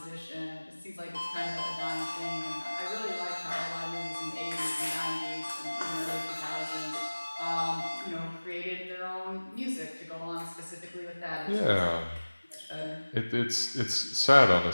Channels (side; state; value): both; inverted; correlation -1.00